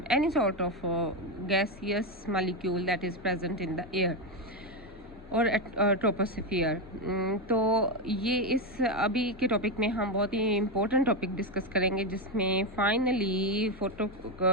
any sort of gaseous molecule that is present in the air और ट्रोपोस्फियर। तो ये इस अभी के टॉपिक में हम बहुत ही इम्पोर्टेंट टॉपिक डिस्कस करेंगे, जिसमें फाइनली फोटो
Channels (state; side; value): normal; both; correlation 0.09